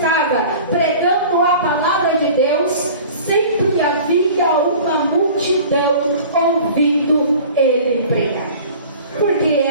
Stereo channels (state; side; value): inverted; both; correlation -0.43